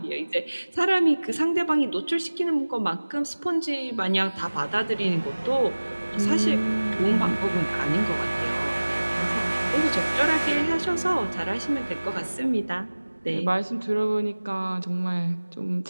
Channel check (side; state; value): both; inverted; correlation -1.00